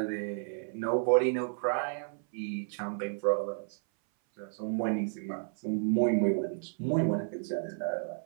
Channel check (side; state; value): left; silent; 57 dB below the other